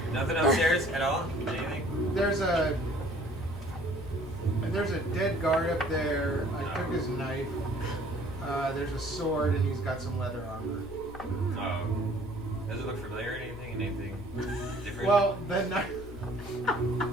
Nothing upstairs at all? Anything? There's a dead guard up there. I took his knife. There's a sword and he's got some leather armor. Does it look familiar? Anything different? Well, the knife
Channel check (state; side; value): normal; both; correlation 0.55